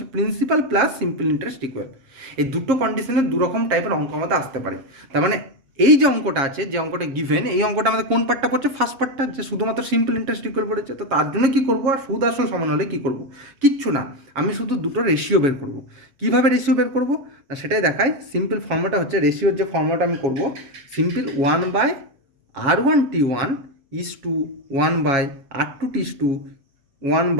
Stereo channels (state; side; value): late; left; 7.3 ms